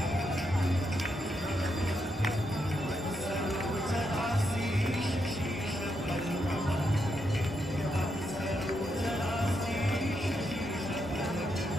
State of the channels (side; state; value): both; normal; correlation 0.81